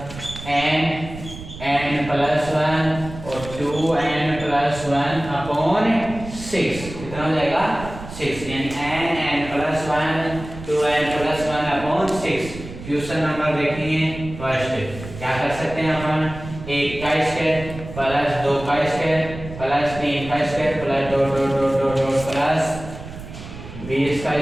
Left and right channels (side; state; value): right; noise; rumble, 12 dB below the sound